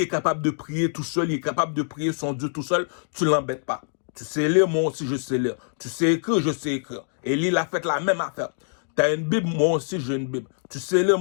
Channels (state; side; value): silent; right; digital silence